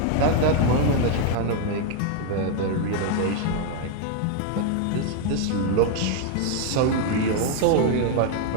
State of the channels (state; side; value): different; both; correlation 0.01